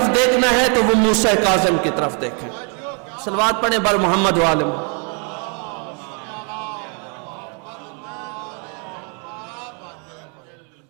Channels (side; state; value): left; quieter; 34.5 dB